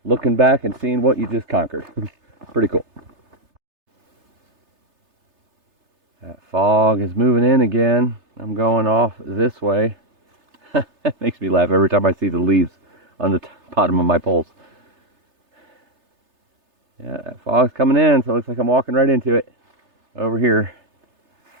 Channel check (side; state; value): left; late; 3.3 ms